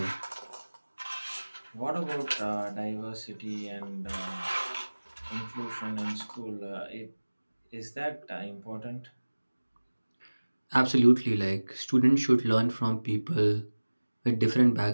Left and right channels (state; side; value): inverted; both; correlation -1.00